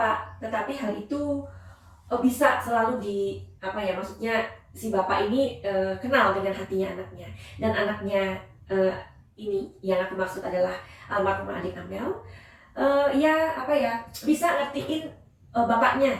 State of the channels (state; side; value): identical; both; correlation 1.00